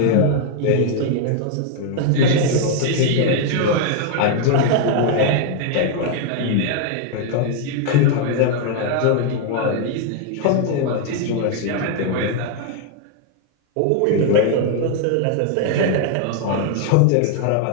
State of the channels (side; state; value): both; different; correlation 0.00